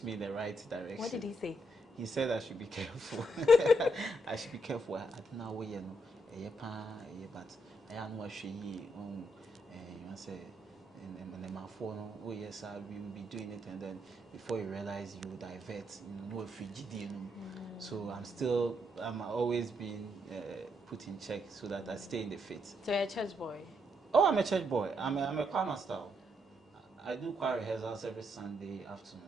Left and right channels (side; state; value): both; normal; correlation 0.77